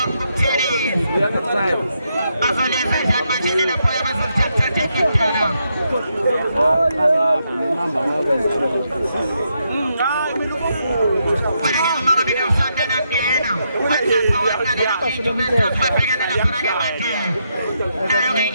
umthelezi. Bazolenza njani manje lapho abazothatha ikudala.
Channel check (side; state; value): both; inverted; correlation -0.80